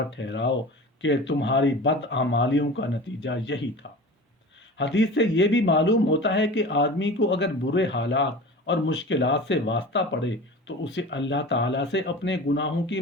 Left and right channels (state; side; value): normal; both; correlation 0.35